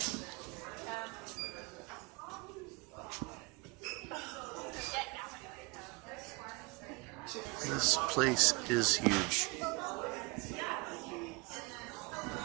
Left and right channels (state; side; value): quieter; left; 27.6 dB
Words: This place is huge.